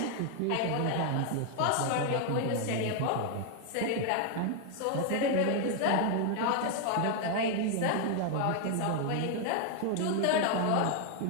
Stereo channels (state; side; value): different; both; correlation 0.00